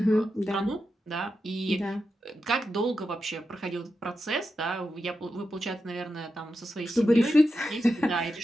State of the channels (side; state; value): both; normal; correlation 0.89